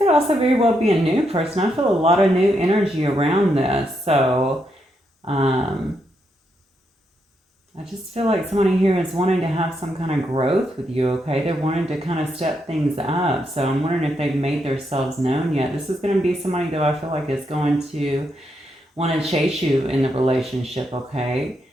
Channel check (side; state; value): both; normal; correlation 0.80